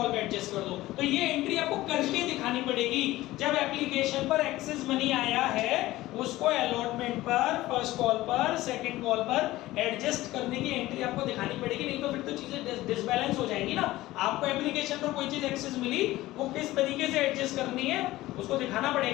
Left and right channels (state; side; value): quieter; right; 17.1 dB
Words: पे एडजस्ट कर दो। तो ये एंट्री आपको करके दिखानी पड़ेगी। जब एप्लीकेशन पर एक्सेस मनी आया है उसको अलॉटमेंट पर, फर्स्ट कॉल पर, सेकंड कॉल पर एडजस्ट करने की एंट्री आपको दिखानी पड़ेगी, नहीं तो फिर तो चीजें डिसबैलेंस हो जाएंगी ना। आपको एप्लीकेशन पर कोई चीज एक्सेस मिली वो किस तरीके से एडजस्ट करनी है उसको दिखाना